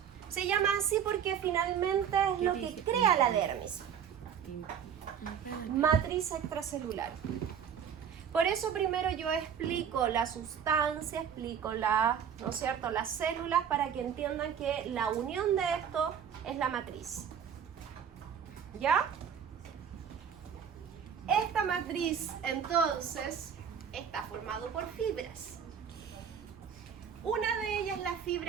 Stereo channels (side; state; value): left; quieter; 8.0 dB